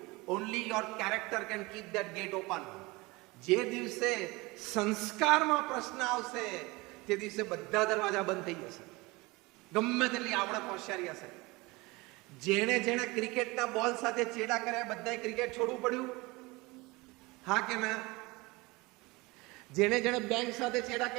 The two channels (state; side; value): quieter; left; 23.5 dB